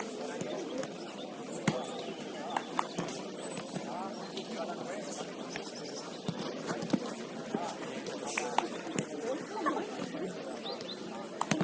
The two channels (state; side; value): identical; both; correlation 1.00